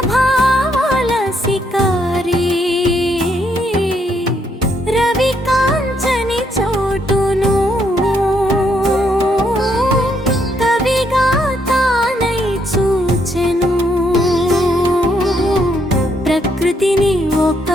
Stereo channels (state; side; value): normal; both; correlation 0.74